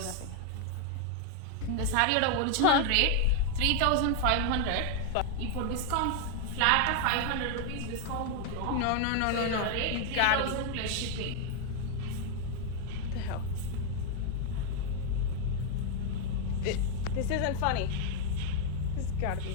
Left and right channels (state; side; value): different; both; correlation 0.00